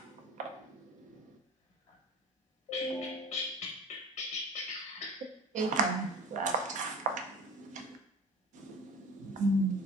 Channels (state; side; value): normal; both; correlation 0.37